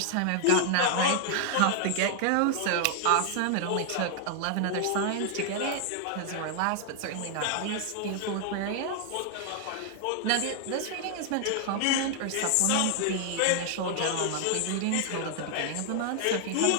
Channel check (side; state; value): both; different; correlation 0.00